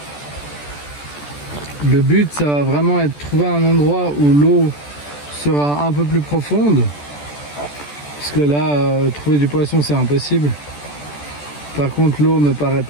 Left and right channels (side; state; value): right; late; 14 ms